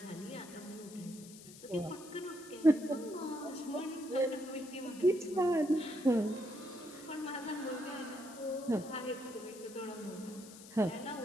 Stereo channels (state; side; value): noise; left; hiss, 17 dB below the sound